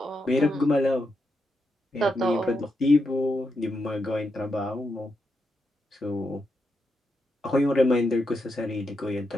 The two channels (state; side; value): normal; both; correlation 0.84